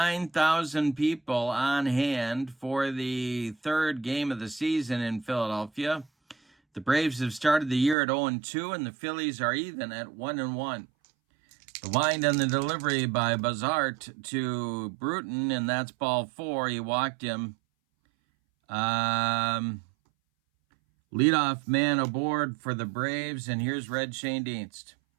people on hand for the third game of the season in Philadelphia. The Braves have started the year at 0-2, and the Phillies are even at 1-1. The wind and the delivery by Bazart to Bruton, and that's ball 4. He walked him. Leadoff man aboard for the Braves, and here's Red Schoendienst.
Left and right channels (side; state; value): left; drops out; at 8.0 s